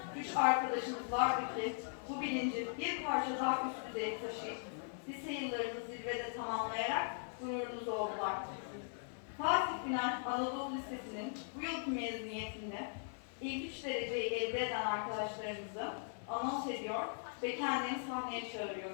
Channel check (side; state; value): right; silent; digital silence